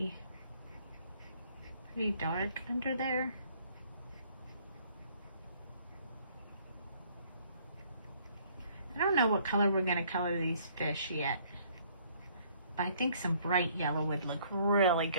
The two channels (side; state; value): both; inverted; correlation -0.62